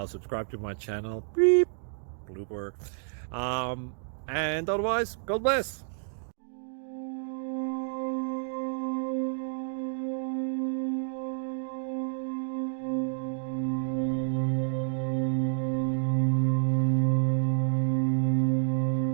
subscribe to my channel. Beep. Blooper. And otherwise, God bless.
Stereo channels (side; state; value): left; silent; digital silence